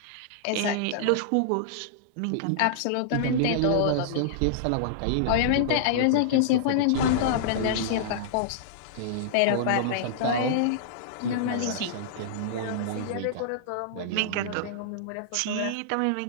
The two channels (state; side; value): different; both; correlation -0.02